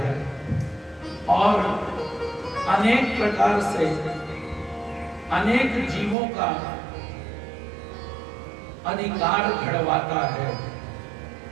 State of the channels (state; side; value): drops out; left; at 6.2 s